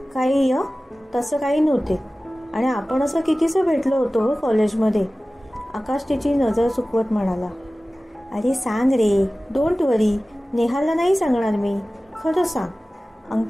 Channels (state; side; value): normal; both; correlation 0.97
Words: काही तसं काही नव्हते. आणि आपण असं कितीसं भेटलो होतो कॉलेजमध्ये. आकाश तिची नजर चुकवत म्हणाला. अरे सांग रे, डोंट वरी, नेहाला नाही सांगणार मी, खरं सांग,